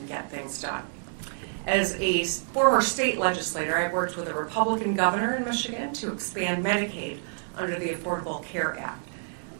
get things done. As a former state legislator, I worked with a Republican governor in Michigan to expand Medicaid under the Affordable Care Act.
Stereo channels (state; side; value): silent; left; digital silence